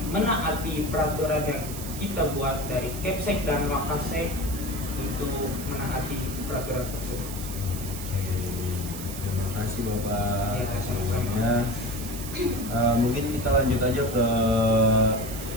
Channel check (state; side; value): noise; right; hiss, 10 dB below the sound